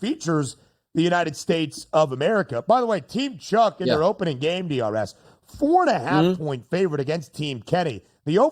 the United States of America. By the way, Team Chuck in their opening game, DRS, 4.5 point favorite against Team Kenny. The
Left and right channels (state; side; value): identical; both; correlation 1.00